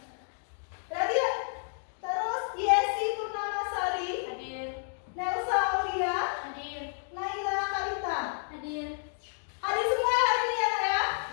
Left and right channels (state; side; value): silent; right; digital silence